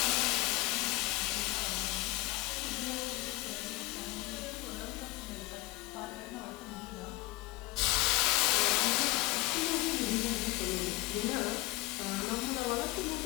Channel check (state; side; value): quieter; right; 20.0 dB